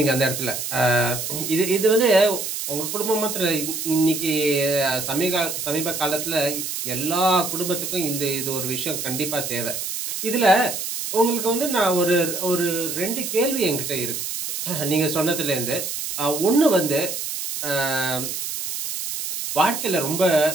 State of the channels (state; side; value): noise; right; hiss, 4 dB below the sound